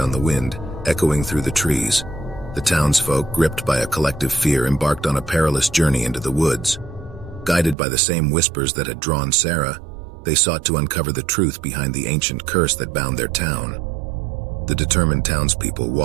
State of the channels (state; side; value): drops out; left; at 7.8 s